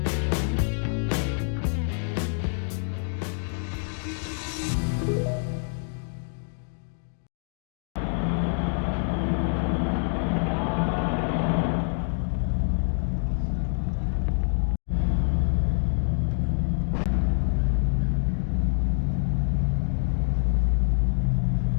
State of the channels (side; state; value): right; silent; 61 dB below the other